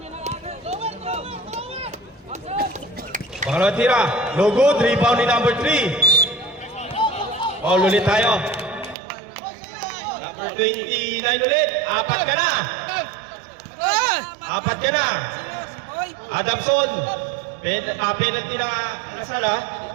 Pangalawang tira. No good. Rebound ni number 3. Foul ulit tayo. Number 29 ulit. Apat ka na. Apat ka na. Adamson. Penalty na Lasal ha.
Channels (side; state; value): left; drops out; at 9.0 s